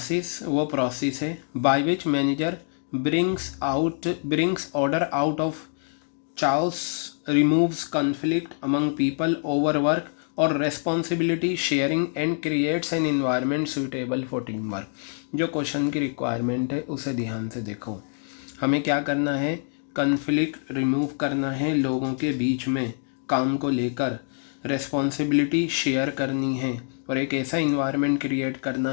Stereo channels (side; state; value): right; silent; 56 dB below the other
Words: वो प्रोसेस है by which manager brings order out of chaos, removes conflict among people over work or responsibility sharing and creates an environment suitable for teamwork। जो question की requirement है उसे ध्यान से देखो। हमें क्या करना है, कन्फ्लिक्ट रिमूव करना है लोगों के बीच में काम को लेकर, रेस्पॉन्सिबिलिटी शेयर करनी है और एक ऐसा इन्वायरमेंट क्रिएट